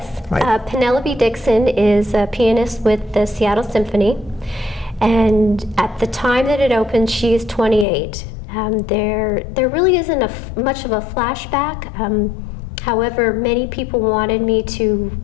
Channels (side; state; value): right; drops out; at 7.9 s